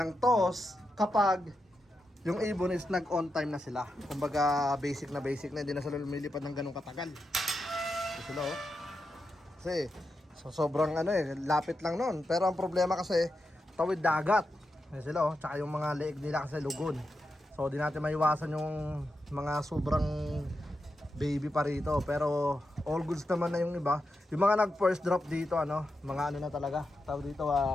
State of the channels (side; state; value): both; normal; correlation 0.87